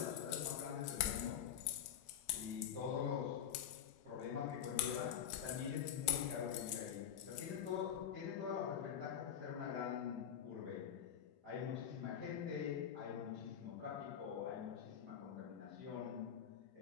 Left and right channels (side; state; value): right; quieter; 9.4 dB